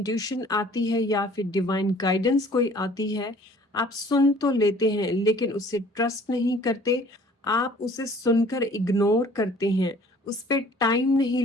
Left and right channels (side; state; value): both; normal; correlation 0.52